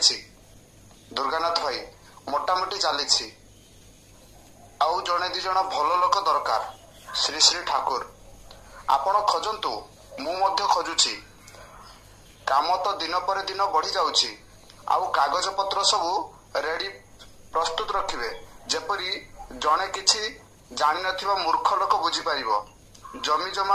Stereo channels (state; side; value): identical; both; correlation 1.00